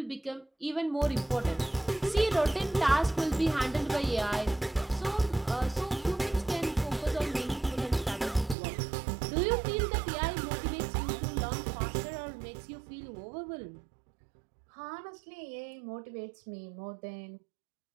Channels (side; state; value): left; drops out; at 8.6 s